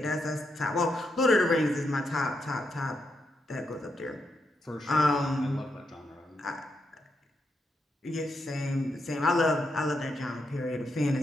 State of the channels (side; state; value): both; normal; correlation 0.82